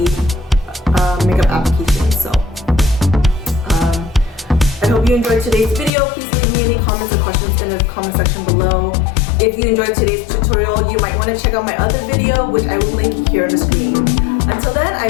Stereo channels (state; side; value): drops out; right; at 5.9 s